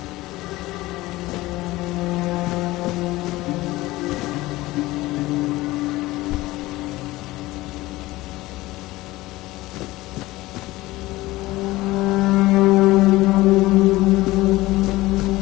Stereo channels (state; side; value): quieter; right; 18.7 dB